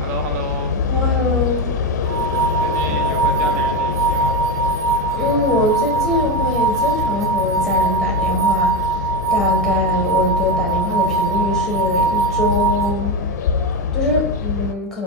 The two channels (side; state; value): both; normal; correlation 0.13